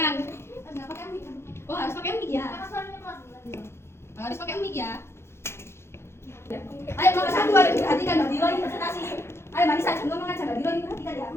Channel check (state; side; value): late; right; 0.12 ms